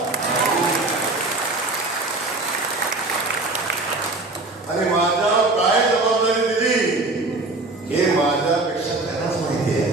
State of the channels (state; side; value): quieter; left; 3.1 dB